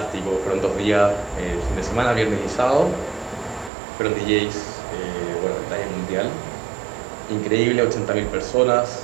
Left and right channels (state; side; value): drops out; left; at 3.7 s